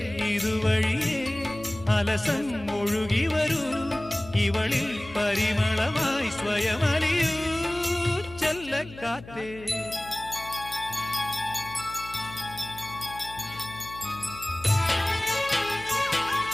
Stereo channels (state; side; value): noise; left; hum, 17 dB below the sound